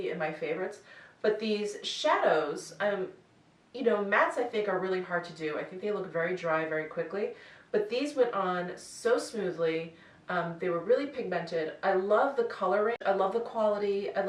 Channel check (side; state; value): both; identical; correlation 1.00